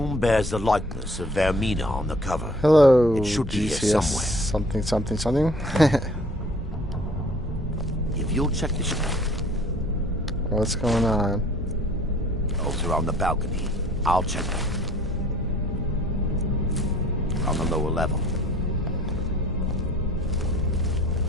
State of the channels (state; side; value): normal; both; correlation 0.54